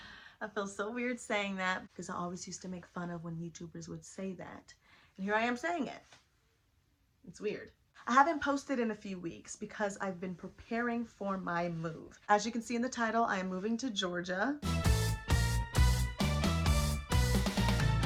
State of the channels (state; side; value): identical; both; correlation 1.00